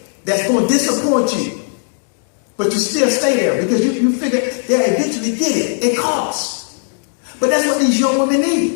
that's going to disappoint you, but you still stay there because you figure they'll eventually get it. It costs. But that's what these young women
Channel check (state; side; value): silent; right; digital silence